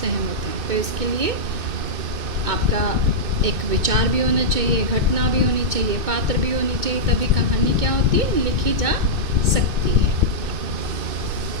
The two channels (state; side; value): late; left; 2.5 ms